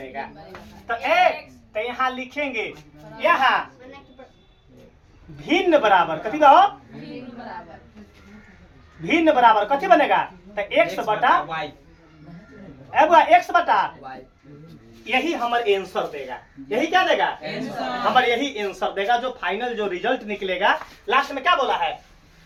तो एक तो यहाँ लिखेंगे यहाँ भिन्न बराबर कथी कहो भिन्न बराबर कथी बनेगा तो x बटा x बटा यही हमारे आंसर देगा। यही क्या देगा हमारे यही आंसर देगा जो फाइनल जो रिजल्ट निकलेगा लास्ट में क्या बोला है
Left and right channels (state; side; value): identical; both; correlation 1.00